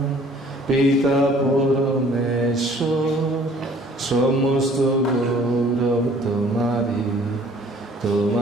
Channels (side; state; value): both; normal; correlation 0.55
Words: পিতা পরমেশ্বর, সমস্ত গৌরব তোমারি,